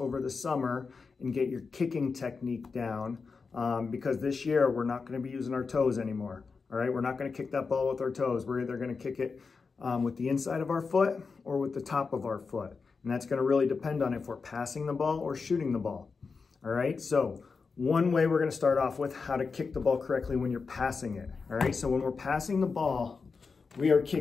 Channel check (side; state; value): right; quieter; 4.8 dB